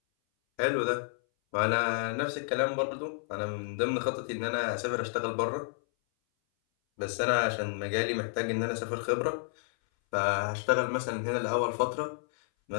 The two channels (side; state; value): right; silent; 57 dB below the other